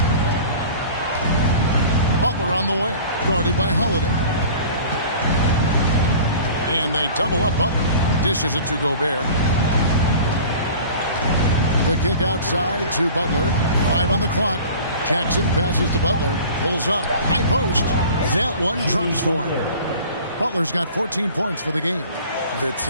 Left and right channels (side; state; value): both; inverted; correlation -0.43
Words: Butler on the way, guarded by Holiday. And they double up Butler. Dishes it to Gobert. The kick outside to Butler. 5 on the clock. Jackson passes to Butler. Pulls up. High post. That one drops for him. Butler's got 14 points for the game. The